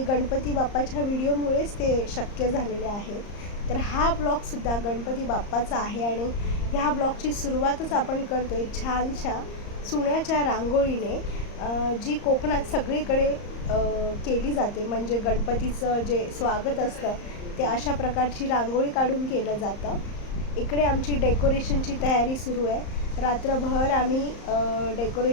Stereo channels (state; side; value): late; right; 34 ms